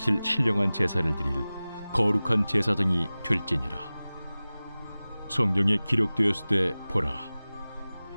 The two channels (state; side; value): inverted; both; correlation -0.98